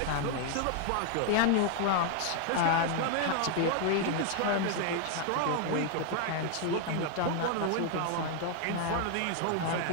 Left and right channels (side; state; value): both; different; correlation 0.00